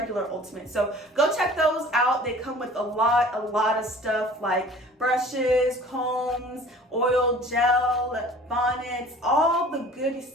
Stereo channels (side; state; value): both; normal; correlation 0.47